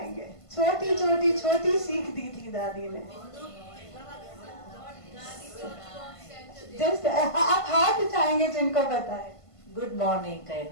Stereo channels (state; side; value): late; right; 1.5 ms